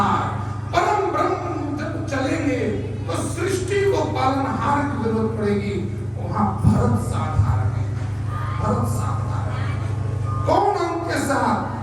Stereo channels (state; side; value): identical; both; correlation 1.00